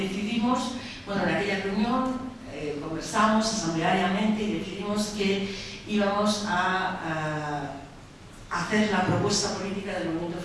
en aquella reunión conversamos asambleariamente y decidimos que íbamos a hacer la propuesta política del movimiento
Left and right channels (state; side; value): identical; both; correlation 1.00